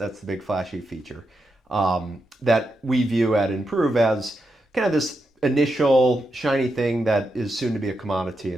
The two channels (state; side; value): normal; both; correlation 0.85